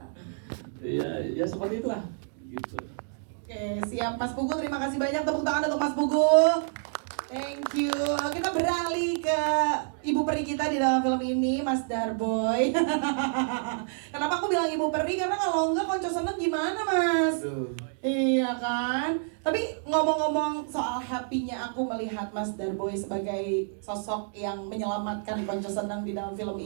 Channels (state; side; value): silent; left; digital silence